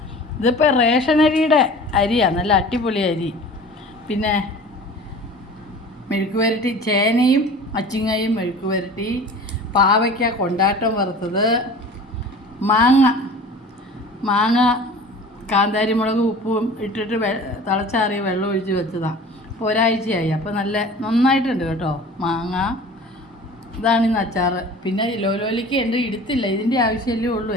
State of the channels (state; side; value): normal; both; correlation 0.41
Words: ഇതിപ്പോൾ റേഷനരിയുടെ അരിയാണ്, നല്ല അടിപൊളി അരി. പിന്നെ മെഴുക്ക് പുരട്ടി, ചേനയും അച്ചിങ്ങയും മെഴുക്ക് പുരട്ടി, പാവയ്ക്ക കൊണ്ടാട്ടം വറുത്തത്, മാങ്ങ കാന്താരി മുളക് ഉപ്പും ഇട്ടിട്ട് തിളച്ചാറിയ വെള്ളം ഒഴിച്ച് വെച്ചതാണ്. അപ്പോൾ ഒരാഴ്ചയായി. അപ്പോൾ നന്നായിട്ടുണ്ട് കേട്ടോ മാങ്ങ. ഇതാണ് ഇന്ന് അച്ചാറ്. പിന്നെ ലോലിക്ക് ഉണ്ട്, എടുത്തില്ല, ഇതിൻ്റെ ആവശ്യമല്ലേ ഉള്ളൂ,